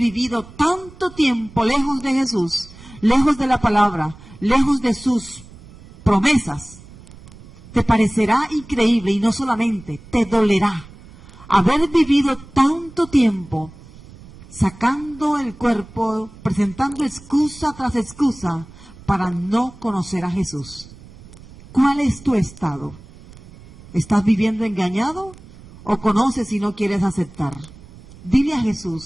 tanto tiempo lejos de Jesús, lejos de la palabra, lejos de sus promesas. Te parecerá increíble y no solamente, te dolerá haber vivido tanto tiempo sacando el cuerpo, presentando excusa tras excusa para no conocer a Jesús. ¿Cuál es tu estado? ¿Estás viviendo engañado o conoces y no quieres aceptar? Dile a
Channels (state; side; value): noise; right; rumble, 20 dB below the sound